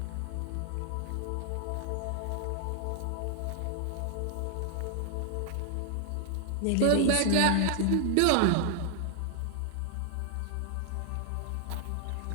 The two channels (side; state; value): both; different; correlation 0.00